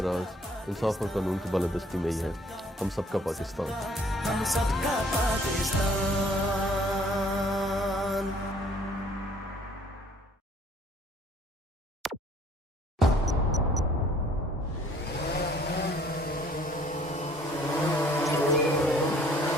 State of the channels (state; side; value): normal; both; correlation 0.58